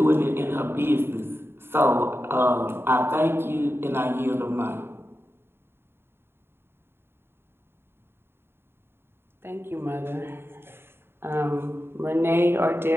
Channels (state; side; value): late; left; 0.11 ms